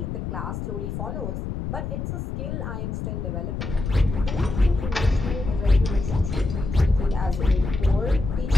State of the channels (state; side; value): noise; left; rumble, 4 dB below the sound